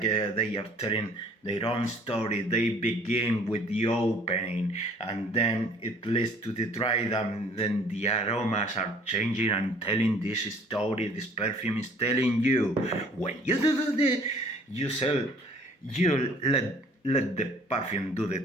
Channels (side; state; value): both; normal; correlation 0.54